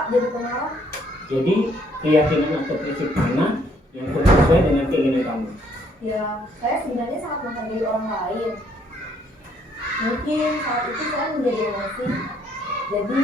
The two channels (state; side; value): normal; both; correlation 0.67